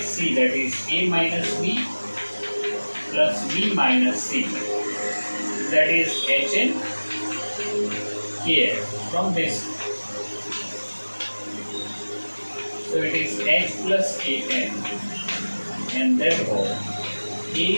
C, that is A minus B plus B minus C, that is Hn Kn from this. So it is H plus Kn, and therefore A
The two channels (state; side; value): inverted; both; correlation -1.00